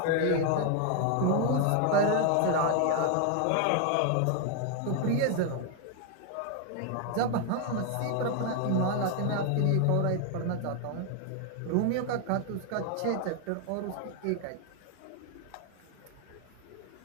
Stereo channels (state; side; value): different; both; correlation 0.00